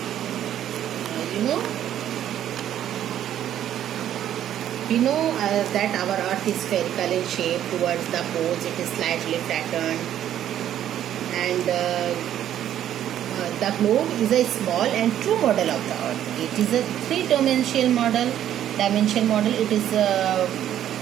we know that our earth is spherical in shape. Towards the poles it is slightly flattened, and the globe is a small and true model of the earth. It is a three-dimensional model. It is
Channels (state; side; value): quieter; left; 11.1 dB